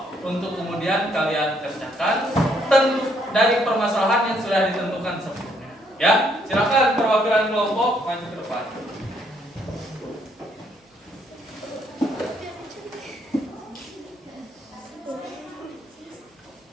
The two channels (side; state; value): both; normal; correlation 0.70